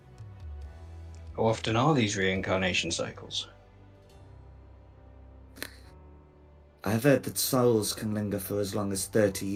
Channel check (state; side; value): identical; both; correlation 1.00